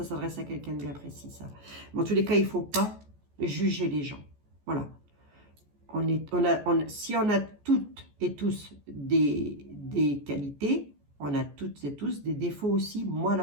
s'adresse à quelqu'un de bien précis, ça. Mais en tous les cas, il ne faut pas juger les gens. Voilà. Si on a toutes et tous des qualités, on a toutes et tous des défauts aussi. Moi,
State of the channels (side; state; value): left; late; 14 ms